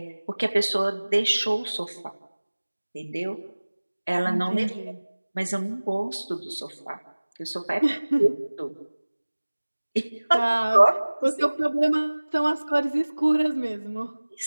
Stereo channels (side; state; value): both; inverted; correlation -1.00